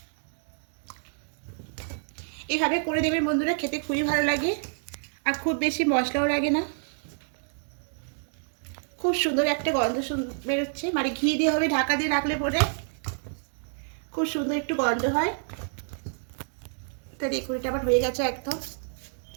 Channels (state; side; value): silent; left; digital silence